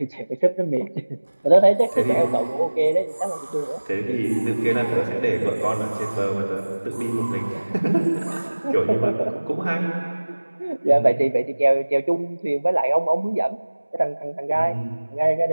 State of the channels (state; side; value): inverted; both; correlation -1.00